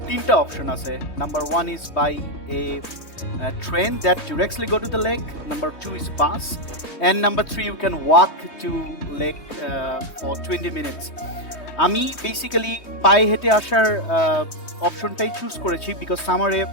3টা অপশন আছে। Number 1 is by a train that directly go to the lake, number 2 is bus, and number 3 you can walk to lake for 20 minutes. আমি বেসিক্যালি পায়ে হেঁটে আসার অপশনটাই চুজ করেছি বিকজ সামারে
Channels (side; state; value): right; late; 3.2 ms